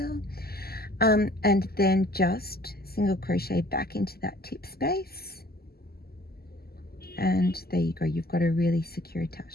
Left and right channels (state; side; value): late; right; 0.45 ms